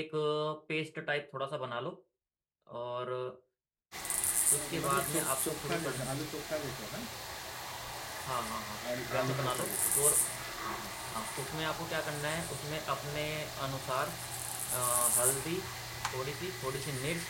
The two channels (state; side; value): identical; both; correlation 1.00